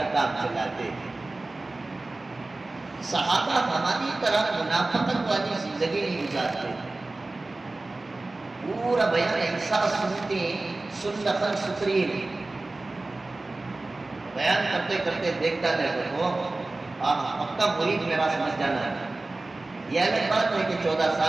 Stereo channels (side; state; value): left; quieter; 3.1 dB